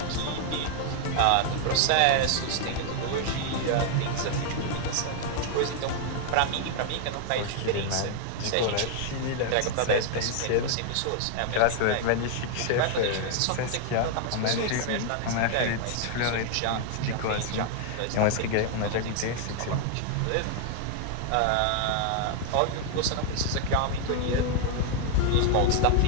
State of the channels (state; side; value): different; both; correlation 0.00